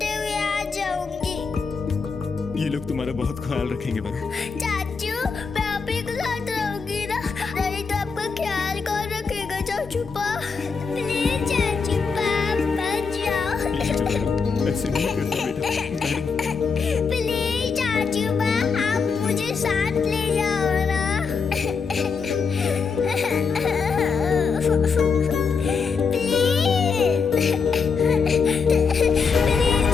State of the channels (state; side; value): quieter; right; 5.3 dB